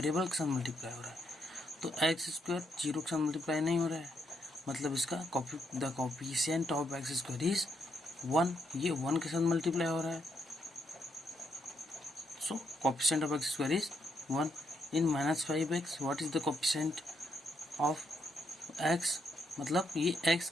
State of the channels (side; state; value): both; normal; correlation 0.77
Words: के साथ मल्टीप्लाई हो रहा है। तो x स्क्वायर जीरो के साथ मल्टीप्लाई नहीं हो रहा है, मतलब इसका the coefficient of x square is 1, ये 1 के साथ मल्टीप्लाई हो रहा है। So coefficient of x square is 1 in minus 5x what is the coefficient of x, मतलब ये x